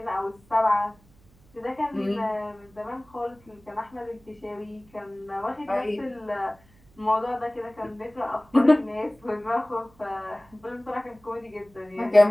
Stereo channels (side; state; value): right; noise; hum, 29 dB below the sound